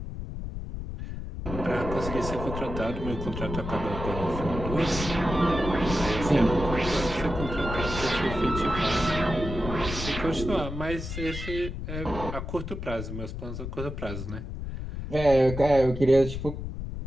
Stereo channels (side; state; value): left; noise; rumble, 7 dB below the sound